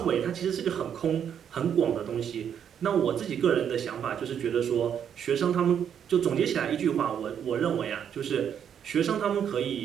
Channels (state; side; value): quieter; left; 8.6 dB